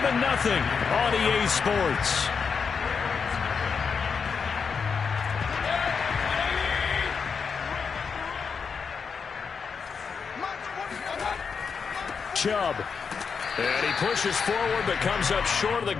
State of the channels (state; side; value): quieter; right; 5.8 dB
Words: on EA Sports. Chubb. And he pushes forward but comes up short of the